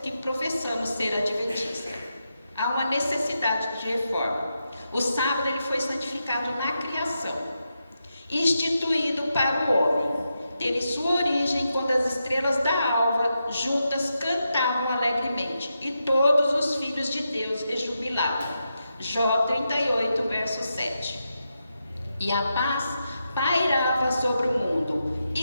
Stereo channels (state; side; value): inverted; both; correlation -0.86